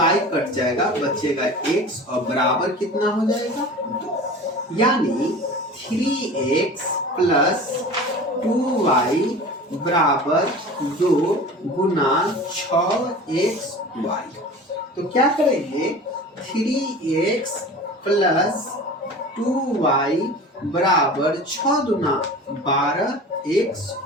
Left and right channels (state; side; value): normal; both; correlation 0.38